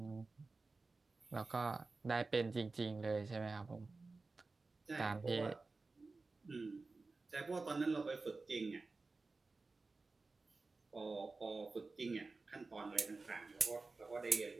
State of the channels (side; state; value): left; quieter; 3.7 dB